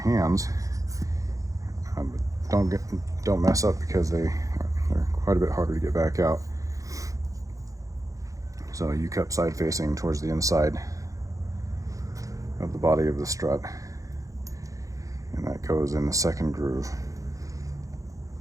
But don't mess up, because they're quite a bit harder to get back out. So U-cup side facing towards the inside of the body of the strut, and that goes in the second groove.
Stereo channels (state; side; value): late; left; 0.16 ms